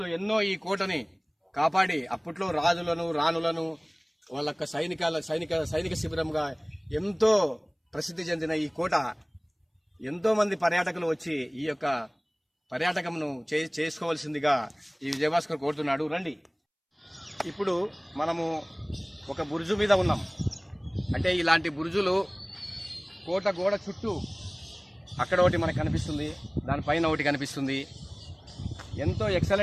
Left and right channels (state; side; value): identical; both; correlation 1.00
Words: ఎన్నో ఈ కోటని కాపాడి అప్పట్లో రాజులను రాణులను వాళ్ళ సైనిక శిబిరంగా ఎంతో ప్రసిద్ధి చెందిన ఈ కోట ఎంతో మంది పర్యాటకులు వచ్చి ఈ యొక్క పర్యాటకంను చేసుకోవాల్సిందిగా ఈ విజయభాస్కర్ కోరుతున్నాడు. రండి. ఇప్పుడు మనము ఒక బురుజు మీద ఉన్నాం. అంటే ఇలాంటి బురుజులు కోట గోడ చుట్టూ అక్కడ ఒకటి మనకు కనిపిస్తుంది, దానిపైన ఒకటి కనిపిస్తుంది. ఎంతో